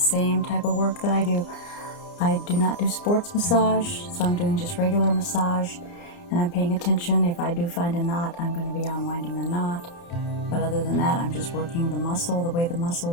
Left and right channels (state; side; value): late; right; 29 ms